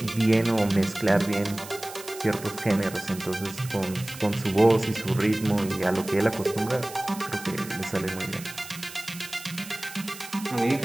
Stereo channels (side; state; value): right; noise; hiss, 15 dB below the sound